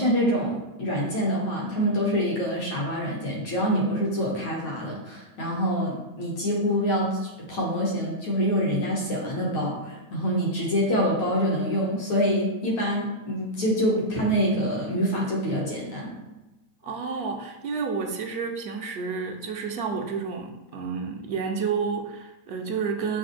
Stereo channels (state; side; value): late; right; 9.2 ms